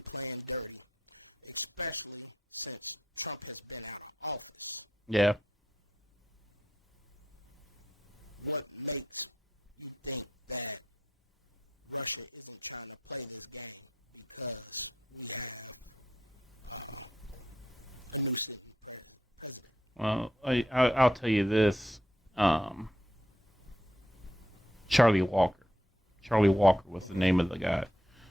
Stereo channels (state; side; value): normal; both; correlation 0.78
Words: playing dirty, especially since Trump has been out of office, yeah, what makes you think that Russia isn't trying to play this game because we have a new sitting president? Well, I'll tell you this. Charlie Walker. Charlie Walker was the name of the guy.